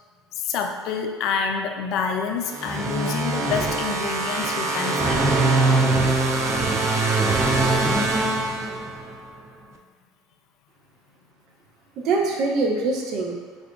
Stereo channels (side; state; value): both; normal; correlation 0.51